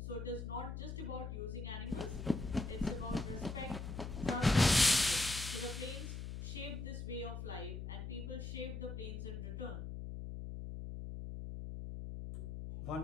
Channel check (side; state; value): left; noise; hum, 6 dB below the sound